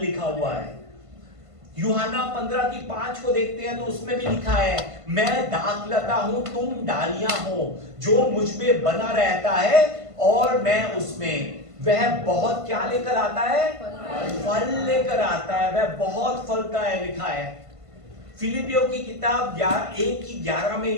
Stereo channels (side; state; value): left; late; 1.5 ms